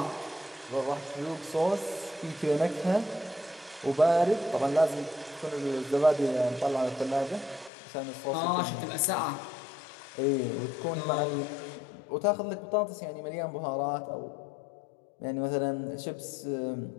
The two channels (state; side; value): drops out; right; at 7.7 s